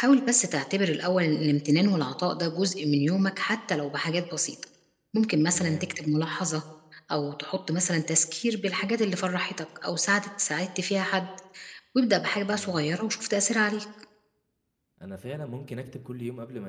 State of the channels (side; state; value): both; identical; correlation 1.00